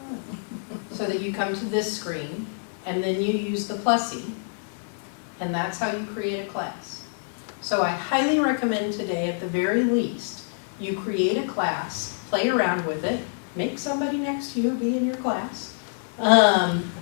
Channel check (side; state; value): right; silent; digital silence